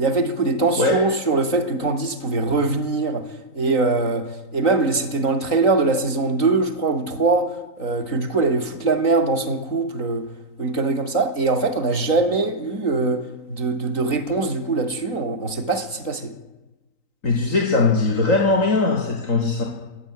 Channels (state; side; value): late; right; 3.9 ms